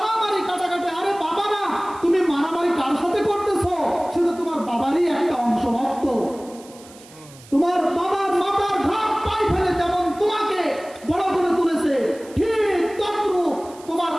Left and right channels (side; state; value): right; noise; hiss, 22 dB below the sound